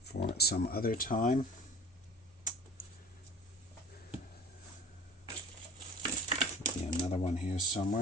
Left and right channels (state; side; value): normal; both; correlation 0.40